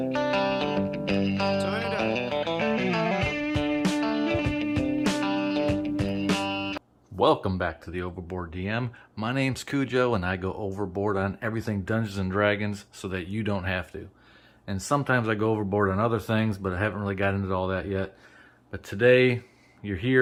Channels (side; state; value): both; identical; correlation 1.00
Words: Welcome back to the Overboard DM. My name's Cujo and I go overboard on everything Dungeons and Dragons so that you don't have to. And sometimes I go overboard on other things, but I haven't really got into all that yet. But today you're